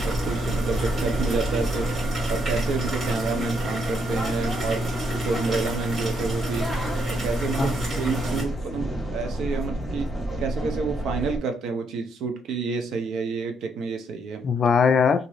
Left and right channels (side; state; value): both; normal; correlation 0.74